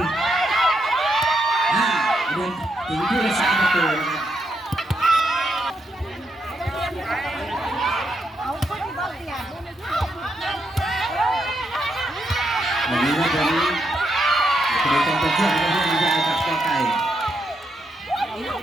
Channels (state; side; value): normal; both; correlation 0.80